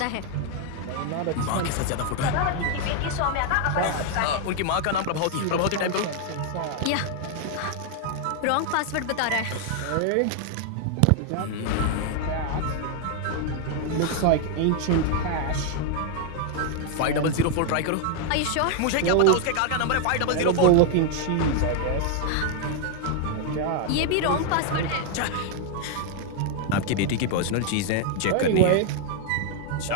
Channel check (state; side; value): different; both; correlation 0.00